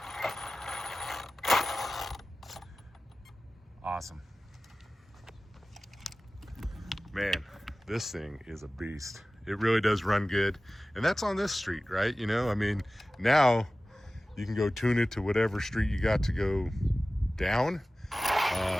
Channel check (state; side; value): normal; both; correlation 0.96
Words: Awesome. Man, this thing is a beast. It really does run good. And that's on this street, right? You know, I mean, now you can go tune it to whatever street you got to go down.